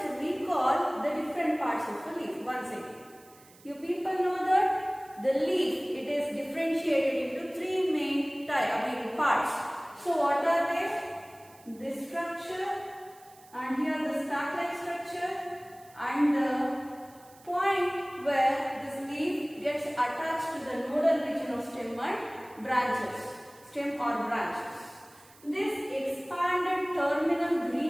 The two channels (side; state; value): right; noise; hiss, 25 dB below the sound